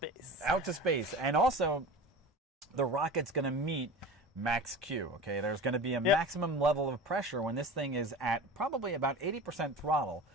Out to space. And also, the rocket's going to meet max Q. Okay, there's going to be a maximum level of pressure when this thing is at probably about 80% throttle,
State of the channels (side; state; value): both; normal; correlation 0.34